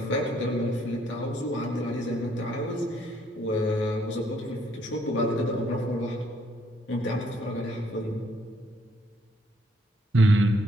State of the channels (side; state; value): both; normal; correlation 0.68